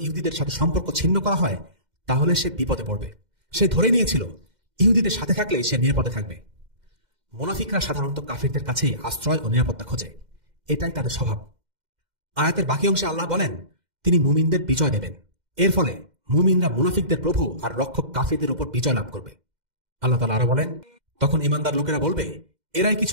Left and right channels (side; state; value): left; late; 2.1 ms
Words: ইহুদিদের সাথে সম্পর্ক ছিন্ন করা হয় তাহলে সে বিপদে পড়বে। সে ধরে নিয়েছিল ইহুদিদের সাথে থাকলে সে নিরাপদে থাকবে। মুনাফিকরা সাধারণত কাফিরদের কাছেই আশ্রয় ও নিরাপত্তা খোঁজে, এটাই তাদের স্বভাব। আয়াতের বাকি অংশে আল্লাহ বলেন, তিনি মুমিনদের বিজয় দেবেন। এর ফলে মুমিনরা মুনাফিকদের প্রভু আর রক্ষক কাফিরদের উপর বিজয় লাভ করবে। আল্লাহ তাআলা আরো বলেন, তখন ঈমানদার লোকেরা বলবে, এরাই কি